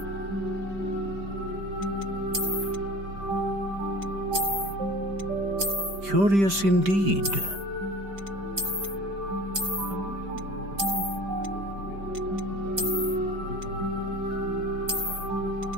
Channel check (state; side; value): late; left; 5.1 ms